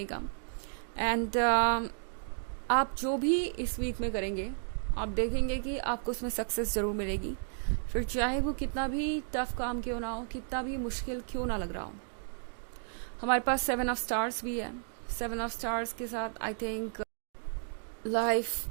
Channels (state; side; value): silent; left; digital silence